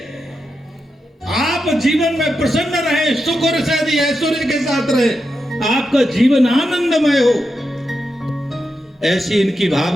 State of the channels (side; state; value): both; normal; correlation 0.87